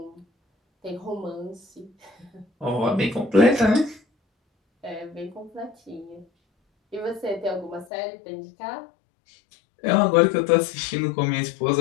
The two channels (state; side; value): drops out; right; at 7.9 s